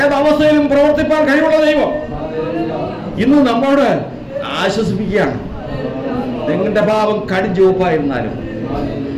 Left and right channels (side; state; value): both; identical; correlation 1.00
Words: പ്രവർത്തിപ്പാൻ കഴിവുള്ള ദൈവം ഇന്ന് നമ്മോട് ആശ്വസിപ്പിക്കുകയാണ്. നിങ്ങളുടെ പാപം കടും ചുവപ്പായിരുന്നാലും,